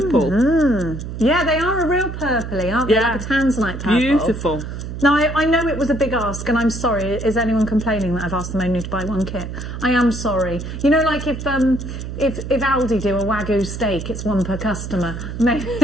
Mm-hmm. Yeah, they are a real purpley, aren't they? Like a tanzanite purple. Beautiful. Now, I know it was a big ask, and I'm sorry. Is anyone complaining that I've asked them only to buy one kit? I am sorry. You know, like if Aldi do a Wagyu steak, it's one per customer.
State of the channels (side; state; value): right; noise; hum, 7 dB below the sound